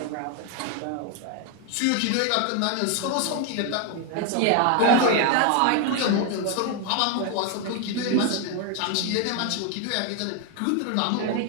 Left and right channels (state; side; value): different; both; correlation 0.01